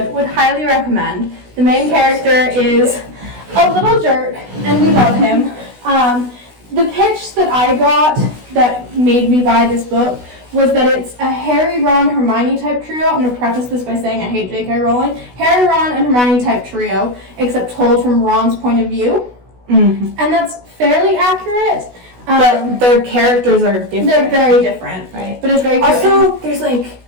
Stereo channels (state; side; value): late; left; 16 ms